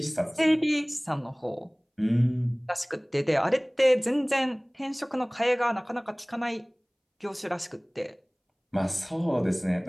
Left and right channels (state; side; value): identical; both; correlation 1.00